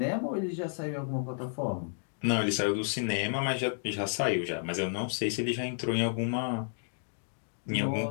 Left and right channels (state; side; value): silent; right; digital silence